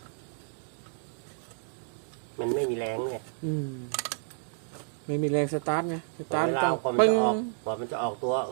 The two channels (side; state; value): left; silent; digital silence